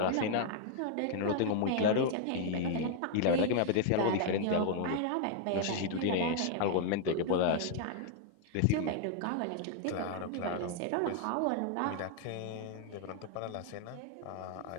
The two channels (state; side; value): different; both; correlation 0.00